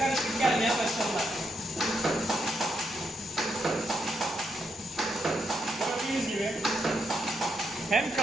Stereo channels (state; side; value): normal; both; correlation 0.79